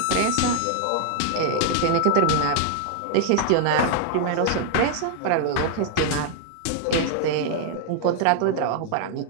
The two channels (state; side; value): different; both; correlation 0.00